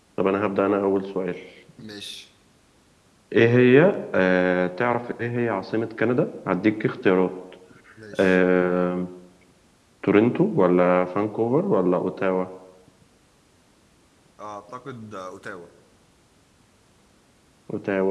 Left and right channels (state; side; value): identical; both; correlation 1.00